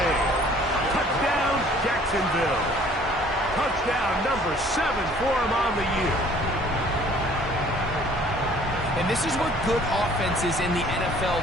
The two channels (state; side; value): normal; both; correlation 0.55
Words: Touchdown, Jacksonville. Touchdown number 7 for him on the year. And this is what good offenses in the NFL